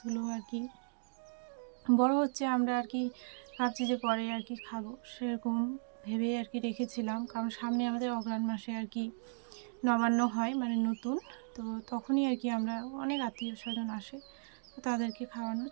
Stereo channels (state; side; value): silent; left; digital silence